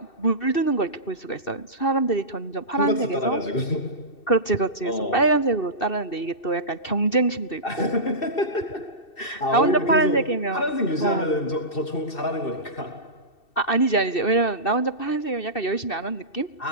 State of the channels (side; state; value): right; late; 2.7 ms